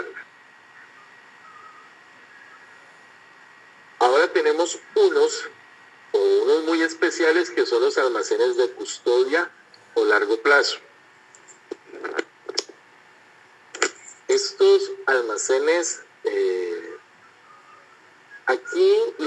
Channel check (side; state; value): both; identical; correlation 1.00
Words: Ahora tenemos unos muy especiales, que son los almacenes de custodia o largo plazo. Estos almacenes, aquí